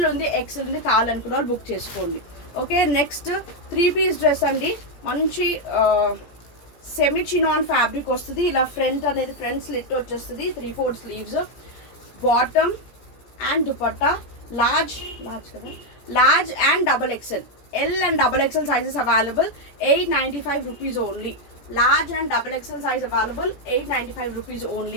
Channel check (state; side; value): late; right; 17 ms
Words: ఉంది, ఎక్సెల్ ఉంది, కావాలనుకున్న వాళ్ళు బుక్ చేసుకోండి. ఓకే, నెక్స్ట్ 3 పీస్ డ్రెస్ అండి. మంచి సెమీ చినాన్ ఫ్యాబ్రిక్ వస్తుంది. ఇలా ఫ్రంట్ అనేది ఫ్రంట్ స్లిట్ వచ్చేస్తుంది, 3/4 sleeves, bottom and dupatta. Large కదా, large and double XL. L and double XL sizes available. 895 rupees only. Large and double XL size available. 895 rupees